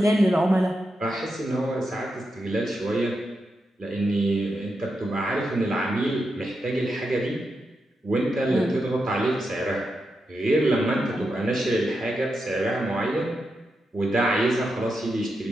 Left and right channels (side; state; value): both; normal; correlation 0.86